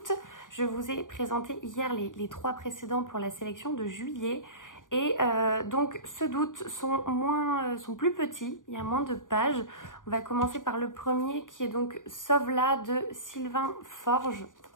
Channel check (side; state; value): right; late; 0.88 ms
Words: Je vous ai présenté hier les 3 précédents pour la sélection de juillet. Et donc ceux d'août sont plus petits, il y a moins de pages. On va commencer par le premier qui est donc Sauve-la de Sylvain Forge.